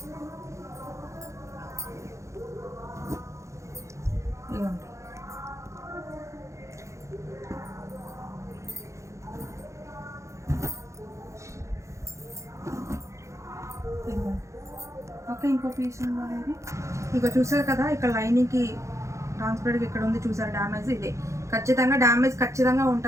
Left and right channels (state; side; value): late; left; 0.14 ms